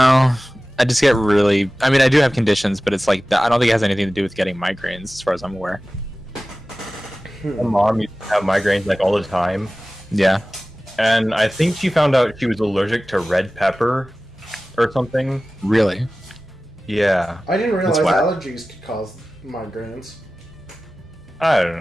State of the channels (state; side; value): noise; right; hum, 29 dB below the sound